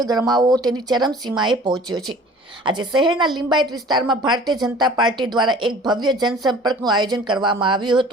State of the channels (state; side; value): normal; both; correlation 0.47